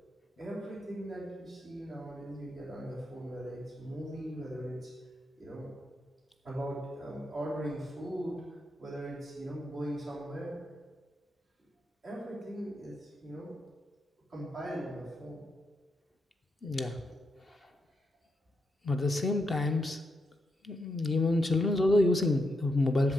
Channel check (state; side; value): normal; both; correlation 0.82